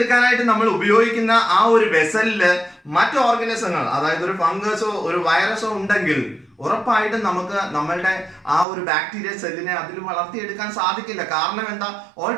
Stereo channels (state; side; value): drops out; left; at 8.7 s